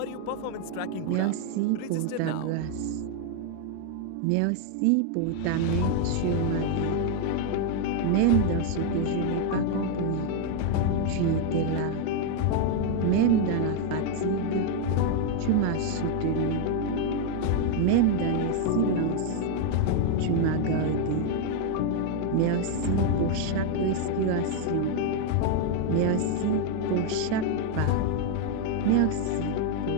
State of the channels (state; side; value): different; both; correlation 0.01